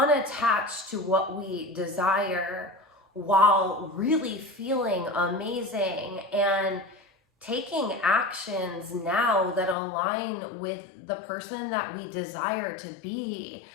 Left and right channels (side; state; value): right; drops out; at 9.8 s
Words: to what we desire while really feeling amazing and taking actions now that align with the person that we desire to be